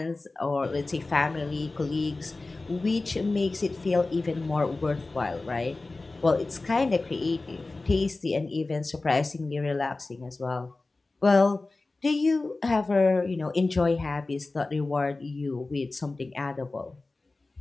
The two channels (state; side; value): quieter; right; 3.3 dB